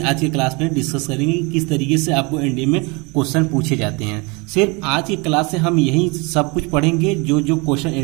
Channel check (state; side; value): quieter; left; 28.6 dB